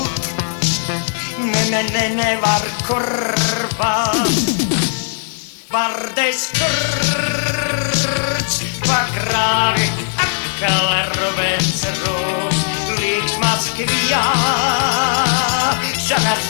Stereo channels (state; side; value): silent; right; 64 dB below the other